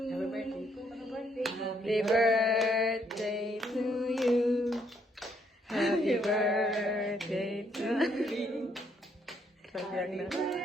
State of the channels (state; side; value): normal; both; correlation 0.71